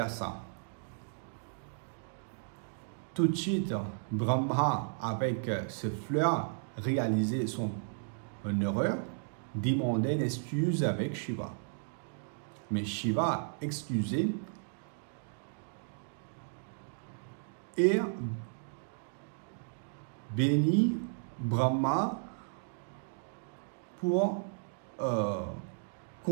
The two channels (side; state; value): left; silent; digital silence